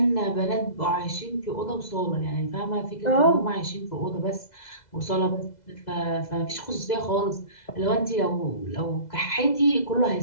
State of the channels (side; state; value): right; late; 2.0 ms